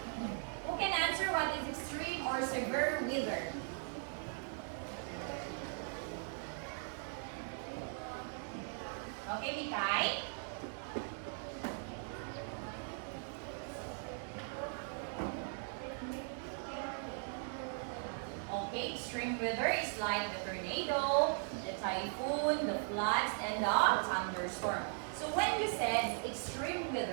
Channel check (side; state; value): left; silent; 52 dB below the other